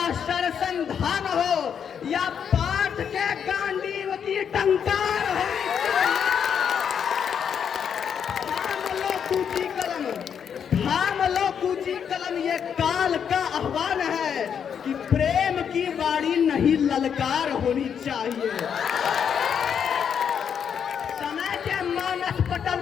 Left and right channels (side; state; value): right; quieter; 7.7 dB